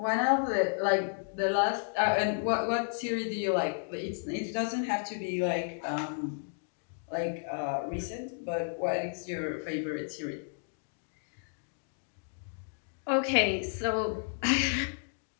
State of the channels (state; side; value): silent; right; digital silence